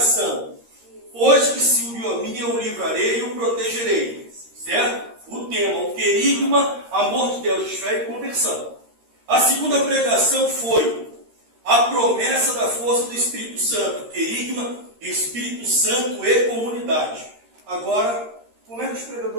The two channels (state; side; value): late; left; 13 ms